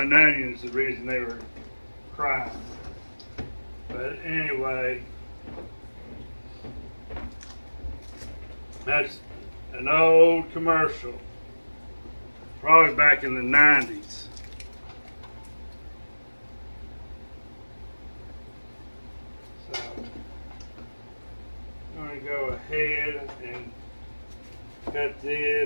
onions, the reason they were crying. But anyway, that's an old commercial, probably back in the 90s. So I'm going to go ahead and cut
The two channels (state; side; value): inverted; both; correlation -1.00